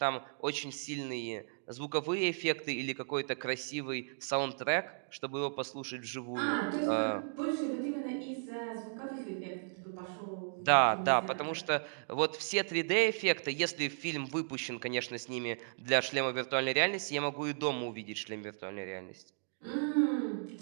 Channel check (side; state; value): left; silent; digital silence